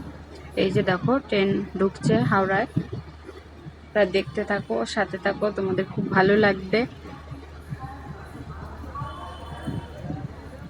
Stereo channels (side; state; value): both; identical; correlation 1.00